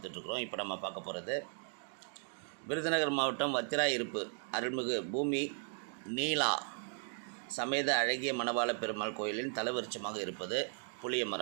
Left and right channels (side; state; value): left; silent; 53 dB below the other